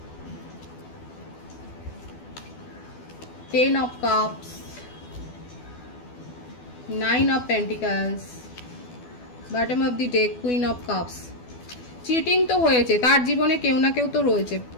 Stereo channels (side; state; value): right; late; 12 ms